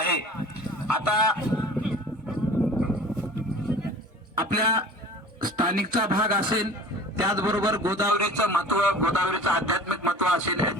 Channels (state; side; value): normal; both; correlation 0.42